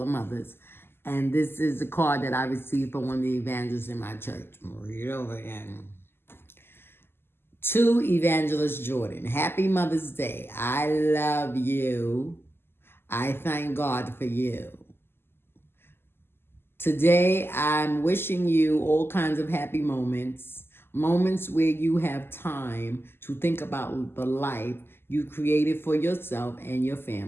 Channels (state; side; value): late; right; 0.11 ms